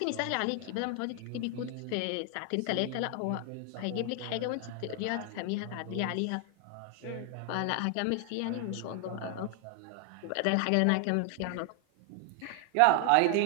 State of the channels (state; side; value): different; both; correlation 0.00